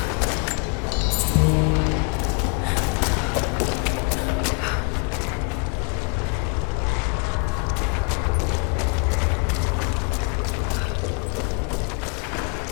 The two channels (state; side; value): quieter; right; 35.9 dB